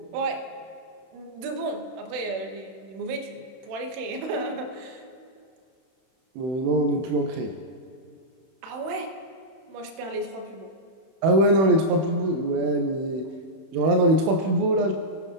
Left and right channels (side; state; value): left; late; 31 ms